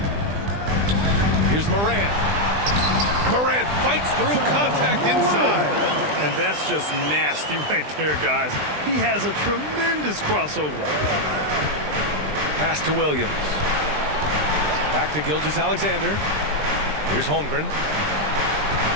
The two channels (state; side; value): late; left; 20 ms